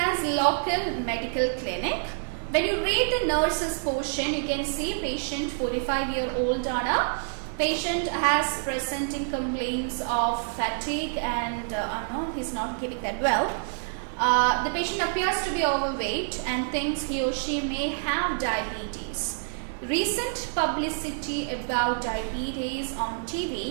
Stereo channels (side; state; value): left; silent; digital silence